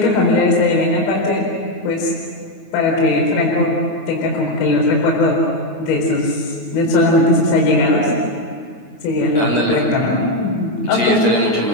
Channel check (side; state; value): right; late; 9.4 ms